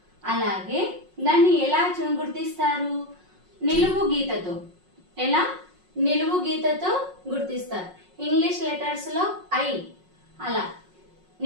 అలాగే దాన్ని ఎలా గుర్తిస్తారు? నిలువు గీతతో. ఎలా? నిలువు గీతతో గుర్తిస్తారు. ఇంగ్లీష్ లెటర్స్లో ఐ, అలా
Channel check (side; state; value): left; late; 5.5 ms